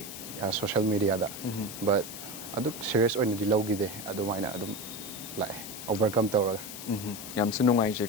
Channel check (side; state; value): left; noise; hiss, 10 dB below the sound